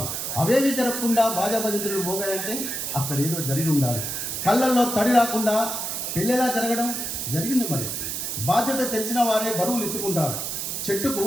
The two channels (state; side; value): noise; right; hiss, 3 dB below the sound